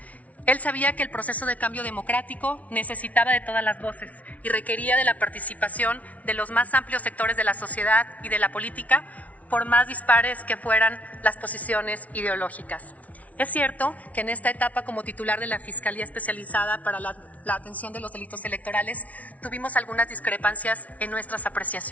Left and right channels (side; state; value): right; late; 0.069 ms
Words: Él sabía que el proceso de cambio democrático necesitaba de todas las voces y requería de la participación de los más amplios sectores de la sociedad y de la política, por más dispares que fueran las posiciones ideológicas. Es cierto que en esta etapa como titular de la Fiscalía Especializada para la Atención de los Delitos Electorales tuvimos algunas discrepancias en nuestras